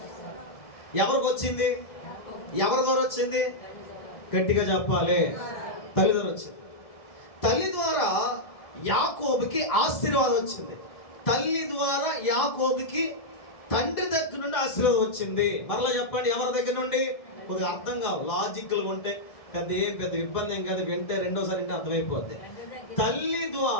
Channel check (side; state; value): right; late; 1.7 ms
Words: ఎవరికి వచ్చింది? ఎవరి ద్వారా వచ్చింది? గట్టిగా చెప్పాలి. తల్లి ద్వారా వచ్చింది. తల్లి ద్వారా యాకోబుకి ఆశీర్వాదం వచ్చింది. తల్లి ద్వారా యాకోబుకి తండ్రి దగ్గర నుండి ఆశీర్వాదం వచ్చింది. మరలా చెప్పండి, ఎవరి దగ్గర నుండి? కొద్దిగా అర్థం కావు, లాజిక్లు ఉంటే పెద్ద ఇబ్బంది ఏం కాదు. వింటే రెండోసారి అంటే అర్థమైపోద్ది. తల్లి